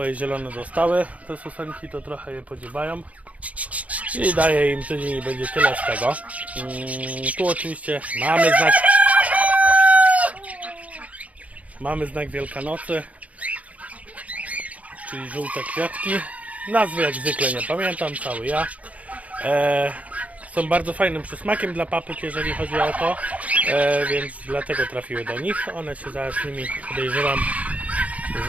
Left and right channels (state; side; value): late; left; 0.068 ms